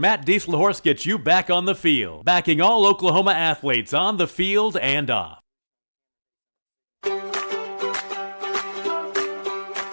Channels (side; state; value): both; inverted; correlation -1.00